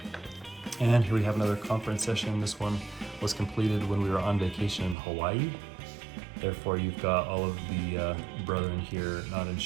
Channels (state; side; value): drops out; left; at 5.0 s